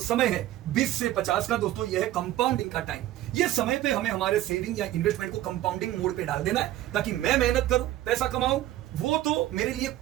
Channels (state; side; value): quieter; left; 14.2 dB